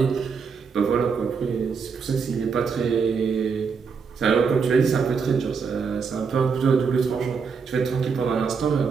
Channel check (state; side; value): quieter; left; 5.6 dB